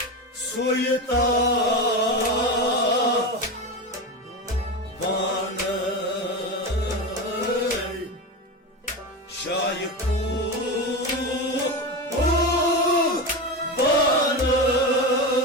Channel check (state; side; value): normal; both; correlation 0.20